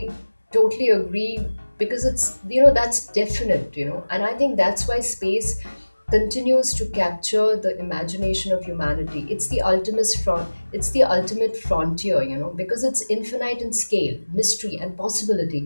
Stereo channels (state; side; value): inverted; both; correlation -1.00